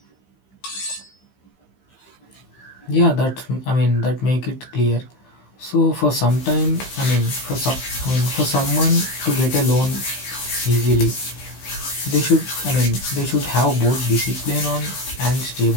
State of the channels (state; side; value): late; right; 15 ms